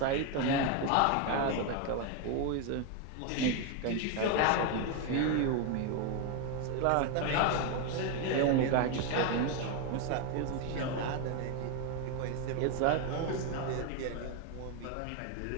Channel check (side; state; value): both; different; correlation 0.01